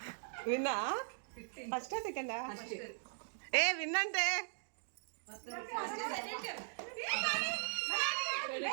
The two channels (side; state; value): left; silent; digital silence